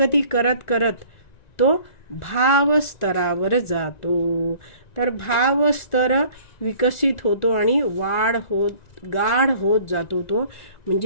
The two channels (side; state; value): right; late; 1.9 ms